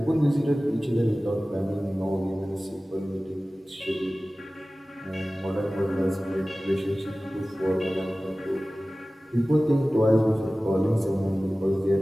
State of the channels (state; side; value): normal; both; correlation 0.97